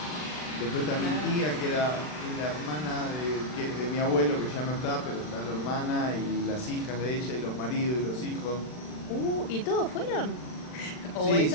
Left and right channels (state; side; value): late; right; 40 ms